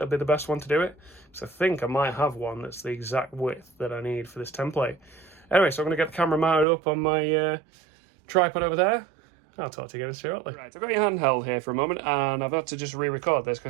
will be the best one to do it. So I think I might have one that's the exact width that I need for this template. Anyway, so I'm going to get the camera mounted up on my tripod over there. I'll talk to you again shortly. Right, I've got your handheld here for a moment, and I've had to just re-record this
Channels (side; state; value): left; drops out; at 6.7 s